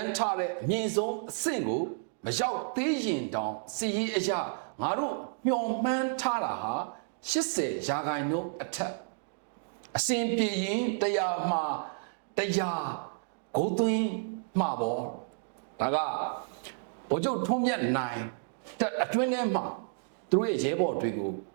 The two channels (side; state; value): left; silent; digital silence